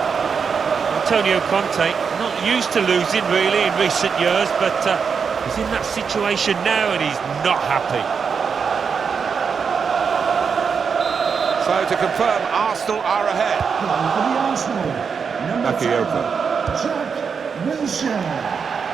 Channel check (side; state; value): left; quieter; 6.1 dB